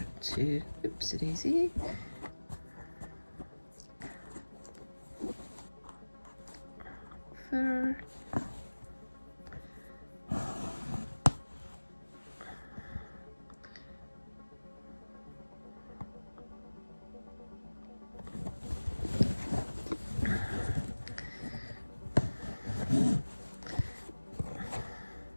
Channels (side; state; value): both; inverted; correlation -1.00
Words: to, oops, daisy. There.